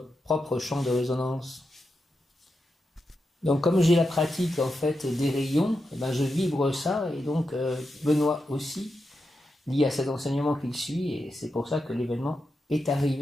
propre champ de résonance. Donc, comme j'ai la pratique en fait des rayons, je vibre ça, et donc Benoît aussi, lié à cet enseignement qu'il suit, et c'est pour ça que l'événement est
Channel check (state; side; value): normal; both; correlation 0.87